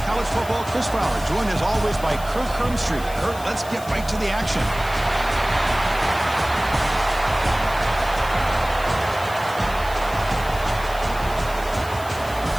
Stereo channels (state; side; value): noise; left; hiss, 16 dB below the sound